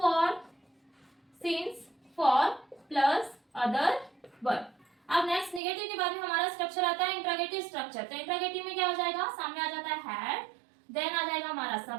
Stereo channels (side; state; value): left; drops out; at 5.6 s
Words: for plus other word. अब नेक्स्ट नेगेटिव के बाद में हमारा स्ट्रक्चर आता है इंट्रोगेटिव स्ट्रक्चर। तो इंट्रोगेटिव में क्या हो जाएगा, सामने आ जाता है हैड, देन आ जाएगा हमारा